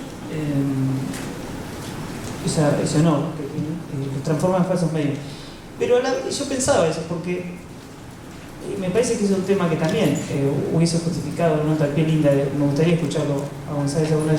ese honor, que los transforma en falsos mediums. Pero yo pensaba eso, porque me parece que es un tema que también hubiese justificado una nota al pie linda, me gustaría escucharlo a González alguna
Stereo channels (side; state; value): both; identical; correlation 1.00